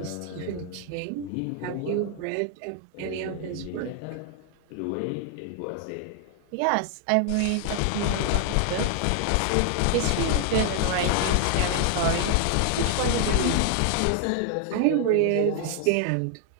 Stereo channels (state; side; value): different; both; correlation 0.00